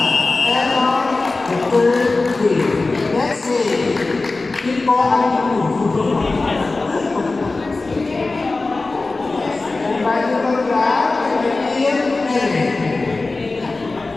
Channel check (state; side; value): quieter; right; 3.5 dB